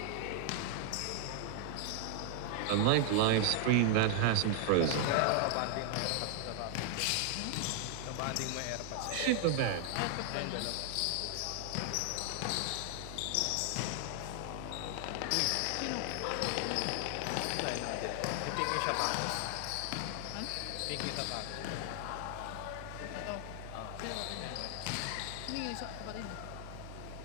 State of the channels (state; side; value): different; both; correlation 0.00